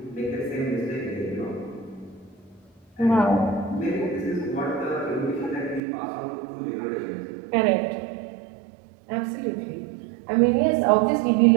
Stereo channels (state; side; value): drops out; left; at 5.8 s